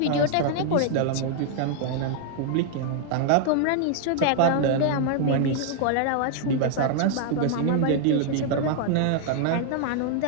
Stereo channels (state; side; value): different; both; correlation 0.00